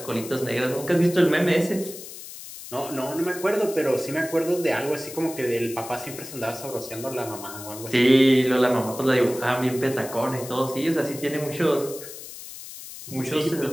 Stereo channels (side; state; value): left; noise; hiss, 13 dB below the sound